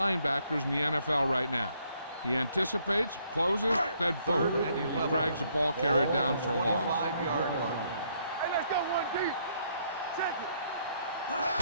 in the NFL right now. He anticipates, closes, then boom, he drags the ball carrier down for a loss. 25-yard line. Hey, let's go, 1D. Check it.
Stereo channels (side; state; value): both; inverted; correlation -0.70